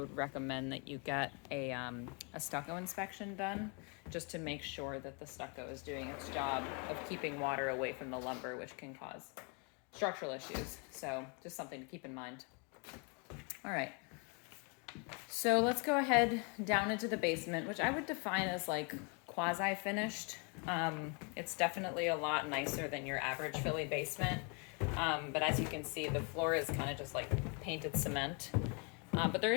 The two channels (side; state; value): right; quieter; 34.9 dB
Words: recommend that you get a stucco inspection done just to make sure that the stucco is doing its job of keeping water away from the lumber, which can cause structural issues. So just something to keep in mind. All right. So let's go ahead down into the basement, which I would define as like quasi-finished. It's definitely a lot nicer than your average Philly basement. But as you can see, the floor is kind of just like painted cement. But there